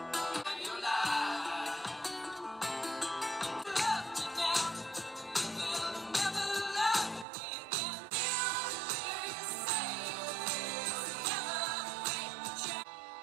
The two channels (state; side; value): drops out; left; at 7.2 s